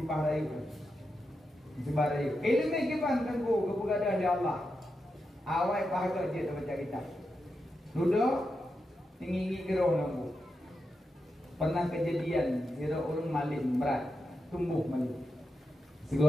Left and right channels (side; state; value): both; normal; correlation 0.87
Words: rayu. Sebarayu. Ilmi kipan tengku keberadaan di Allah. Awal pahala dia baca kitab. Duduk tinggi gerau lampu. Pernah kejadian kira orang malin berat, tumbuh malin.